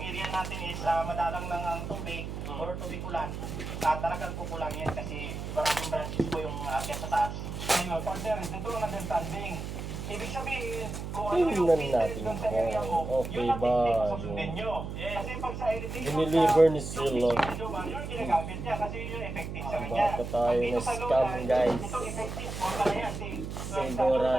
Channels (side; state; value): right; noise; hum, 6 dB below the sound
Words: area natin is madalang lang ang tubig or tubig ulan, talagang kukulang yan kasi maraming branches po yung akyat sa taas. Ayun, partner, dito ang understanding. Ibig sabihin, kung ano yung Tingnan business natin dun sa area mo, kung yun okay ang ba technique susundin nyo. Kasi pag sa heritage, dineliver ni Silo. yun ginagamit niya kasi yun effective sa kanya. Baka tayo Ang dito na sa scam, Lola, guys. ito effective po pala yan.